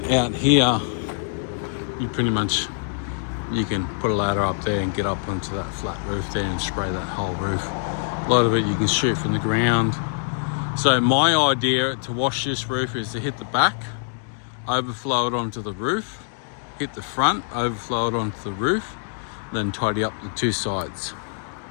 out here, you can put a ladder up there and get up onto that flat roof there and spray that whole roof. A lot of it you can shoot from the ground. So my idea to wash this roof is to hit the back, overflow it onto the roof, hit the front, overflow it onto the roof, then tidy up the 2 sides.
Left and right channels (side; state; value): right; silent; digital silence